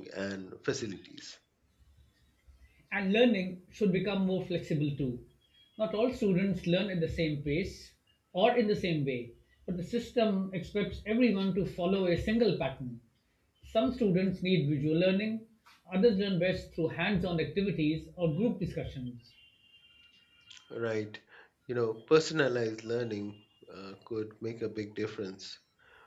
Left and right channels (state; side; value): identical; both; correlation 1.00